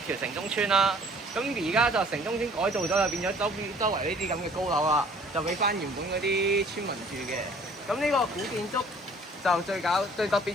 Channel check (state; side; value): normal; both; correlation 0.54